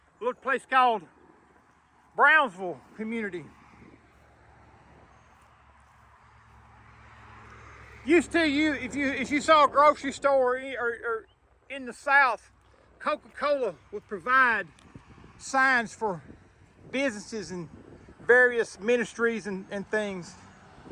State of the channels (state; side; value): identical; both; correlation 1.00